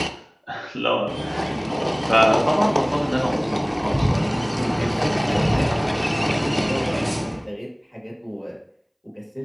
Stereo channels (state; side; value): identical; both; correlation 1.00